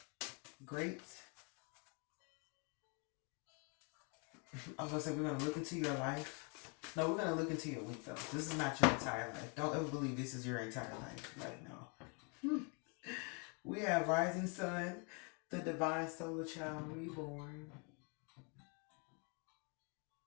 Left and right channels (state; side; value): quieter; right; 35.6 dB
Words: great. I was going to say, we're going to look into your life. No, we're going to look into your week, though. This is not your entire life. Don't ever believe this is your entire life right now. We have Rising Sun, the Divine Solar Child Reborn.